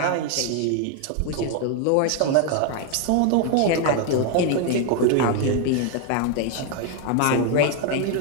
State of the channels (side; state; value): both; different; correlation 0.01